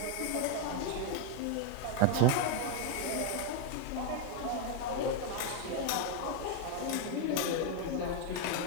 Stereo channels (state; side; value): different; both; correlation 0.01